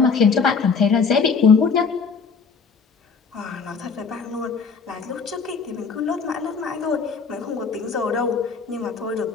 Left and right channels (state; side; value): quieter; right; 5.3 dB